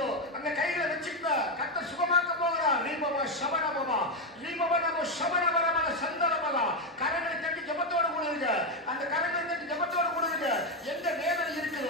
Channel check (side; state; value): both; normal; correlation 0.08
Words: அங்க கையில வச்சுக்க கர்த்தர் சுகமாக்க போகிறார். தீபமா சவணமரமா ரிபனம சவணமரமா சந்தரமரா. கரங்களை தட்டி ஜெபத்தோடு கூடுங்க. அந்த கரங்களை தட்டி ஜெபத்தோடு கூடுங்க. எங்க வேதனை